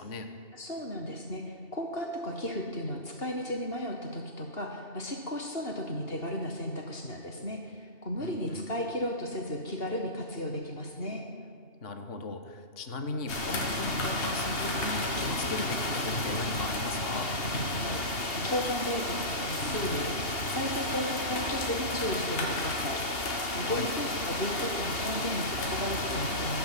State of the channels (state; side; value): late; right; 2.8 ms